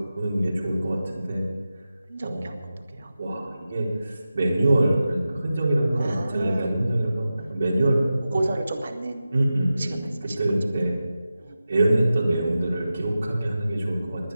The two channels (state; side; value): inverted; both; correlation -0.93